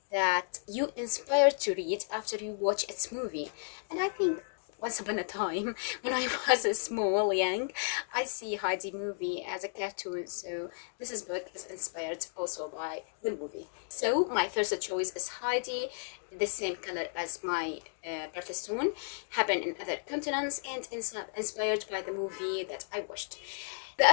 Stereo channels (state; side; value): silent; right; digital silence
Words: that you inspired to read after you watch its movie. And I think once upon a time, when I was young, I see Heidi movie as a cartoon, so this book is inspired also by the movie. So my first choice is Heidi, the same color as my birthstone, happened in other continents, and inspired by the movie that I watched. The